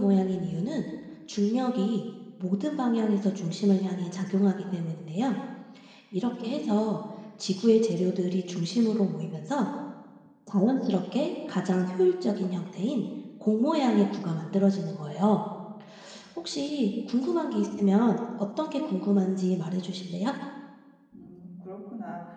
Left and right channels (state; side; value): identical; both; correlation 1.00